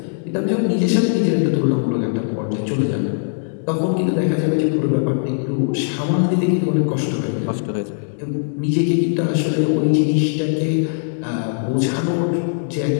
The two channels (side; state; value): right; silent; digital silence